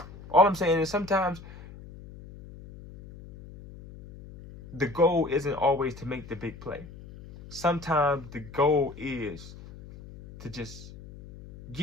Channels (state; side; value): noise; left; hum, 16 dB below the sound